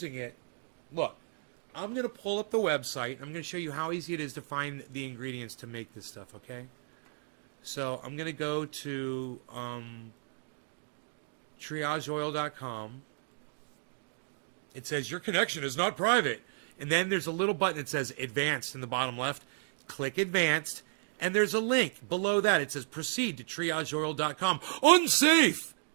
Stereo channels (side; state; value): left; silent; digital silence